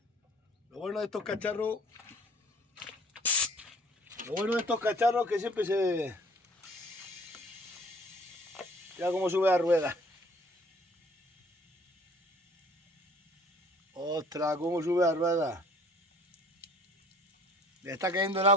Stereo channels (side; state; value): both; normal; correlation 0.54